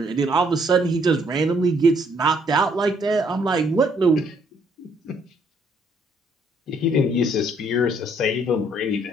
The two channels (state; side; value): normal; both; correlation 0.67